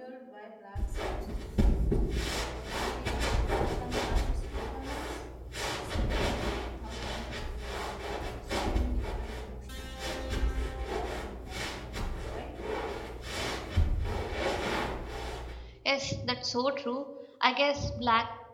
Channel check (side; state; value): both; identical; correlation 1.00